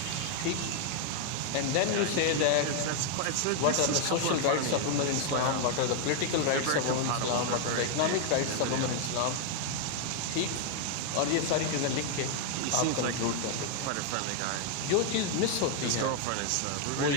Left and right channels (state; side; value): different; both; correlation 0.00